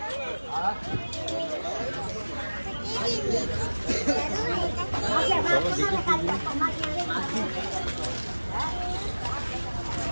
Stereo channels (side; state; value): both; inverted; correlation -1.00